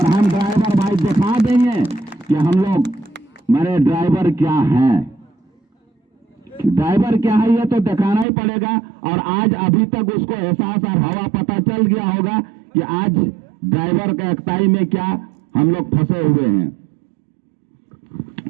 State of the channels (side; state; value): left; drops out; at 8.2 s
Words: हम ड्राइवर भाई दिखा देंगे कि हम लोग मेरे ड्राइवर क्या हैं, ड्राइवर क्या है ये तो दिखाना ही पड़ेगा। और आज अभी तक उसको एहसास और हवा पता चल गया होगा कि आज ड्राइवर का एकताई में क्या हम लोग फंसे हुए हैं।